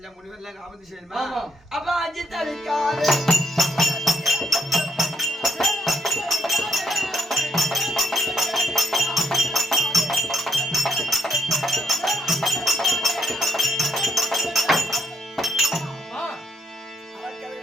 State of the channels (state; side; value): normal; both; correlation 0.74